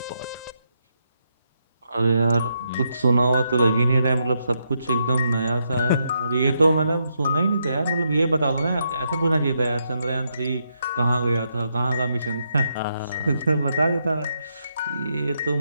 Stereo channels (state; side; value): inverted; both; correlation -0.80